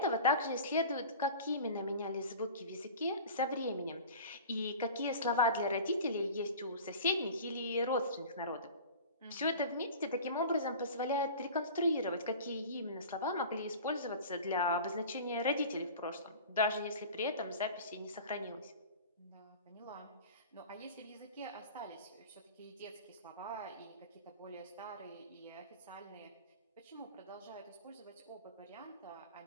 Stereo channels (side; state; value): both; inverted; correlation -0.38